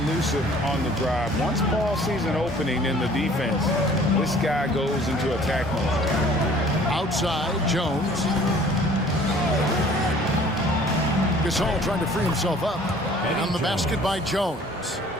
elusive on the drive. Once Paul sees an opening in the defense, this guy goes into attack mode. Outside, Jones. Gasol trying to free himself up. On the basket by Jones.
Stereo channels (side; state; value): both; normal; correlation 0.52